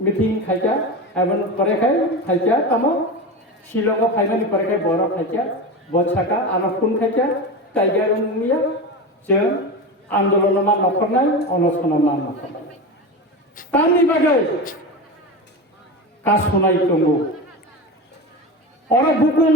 मीटिंग खाइजा एबन परे खाइजा तमो शिलंग फाइनाली परे खाइ बरो खाइजा बछाका आनफुन खाइजा टाइगर मिया जों आंदोलन मा नखरनाय अनसन मा नखरनाय तानि बागै कासनाय दंगो और बुकुन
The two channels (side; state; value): both; normal; correlation 0.23